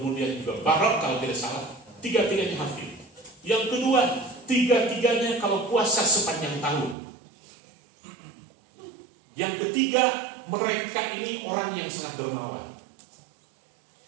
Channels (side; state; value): left; drops out; at 7.0 s